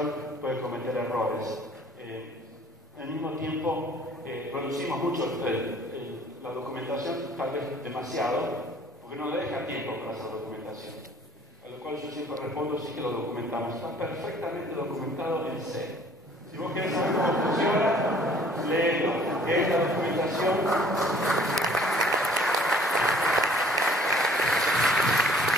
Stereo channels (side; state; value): both; normal; correlation 0.55